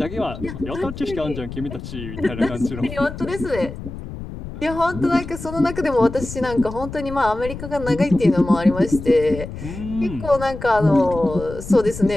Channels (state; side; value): noise; left; rumble, 10 dB below the sound